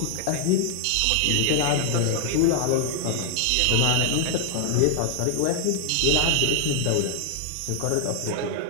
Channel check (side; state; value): both; different; correlation 0.00